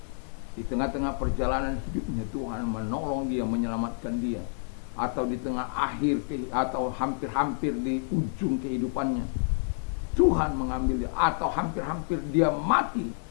di tengah-tengah perjalanan hidupnya Tuhan menolong dia, menyelamatkan dia. Atau di tengah akhir atau hampir-hampir di ujung kehidupannya Tuhan mengambil dia, atau hampir-hampir dia mati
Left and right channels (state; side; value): silent; right; 59 dB below the other